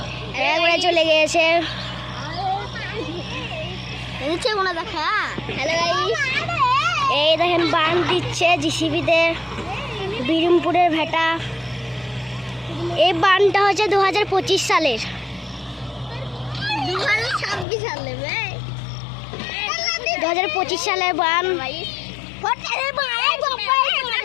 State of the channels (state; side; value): drops out; right; at 17.7 s